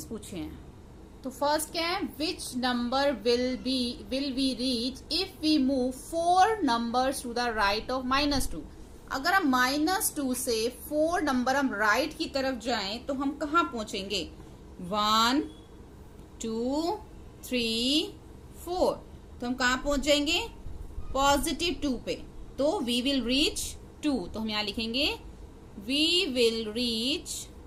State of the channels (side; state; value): both; identical; correlation 1.00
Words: पूछे हैं। तो फर्स्ट क्या है, which number will we reach if we move 4 numbers to the right of -2। अगर हम -2 से 4 नंबर हम राइट की तरफ जाएं तो हम कहाँ पहुंचेंगे, 1 2 3 4, तो हम कहाँ पहुंच जाएंगे, +2 पे। तो वी विल रीच 2, तो हम यहां लिखेंगे वी विल रीच